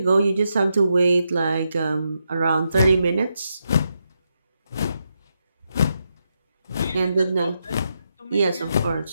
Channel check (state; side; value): inverted; both; correlation -0.83